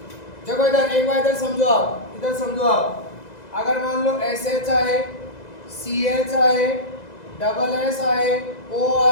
देखो इधर एक बार इधर समझो आप, इधर समझो आप। अगर मान लो एस एच आए, सी एच आए, डबल एस आए, ओ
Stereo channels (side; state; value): right; late; 2.0 ms